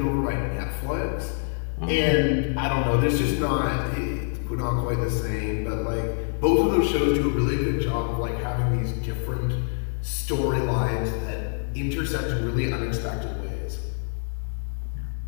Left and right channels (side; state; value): right; silent; digital silence